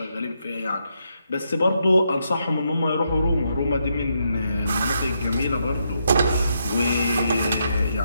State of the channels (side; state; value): both; inverted; correlation -0.80